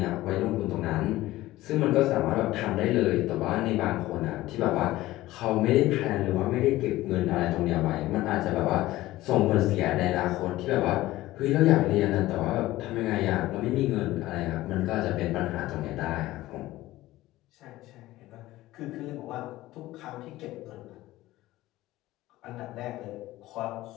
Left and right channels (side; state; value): right; quieter; 16.8 dB